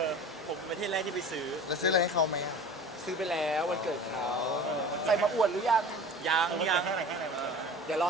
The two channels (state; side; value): normal; both; correlation 0.39